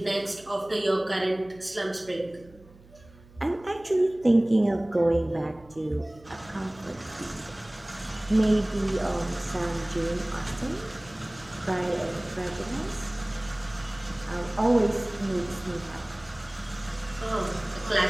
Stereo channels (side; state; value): right; noise; hum, 24 dB below the sound